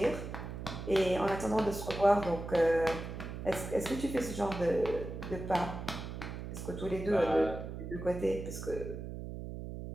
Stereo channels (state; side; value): noise; right; hum, 8 dB below the sound